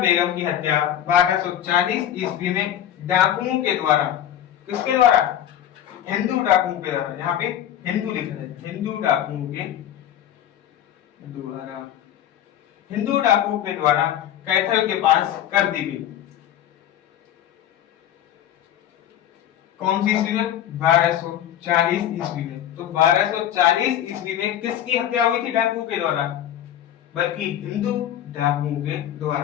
की हत्या 1240 ईस्वी में डाकुओं के द्वारा, किसके द्वारा? हिंदू डाकुओं के द्वारा। यहाँ पे हिंदू लिखा है, हिंदू डाकुओं के द्वारा, हिंदू डाकुओं के द्वारा कैथल के पास कर दी गई। कौन सी ईस्वी में? 1240 ईस्वी में। तो 1240 ईस्वी में किसकी हत्या हुई थी डाकुओं के द्वारा? बल्कि हिंदू डाकुओं के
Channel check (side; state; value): right; quieter; 11.0 dB